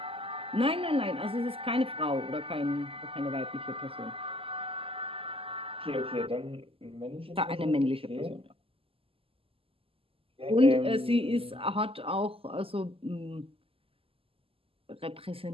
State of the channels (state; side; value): late; left; 0.27 ms